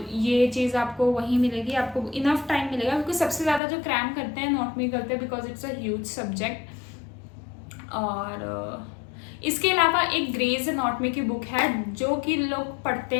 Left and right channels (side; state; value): right; drops out; at 3.6 s